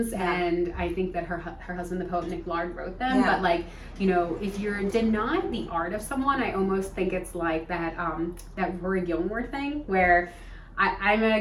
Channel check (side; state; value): both; identical; correlation 1.00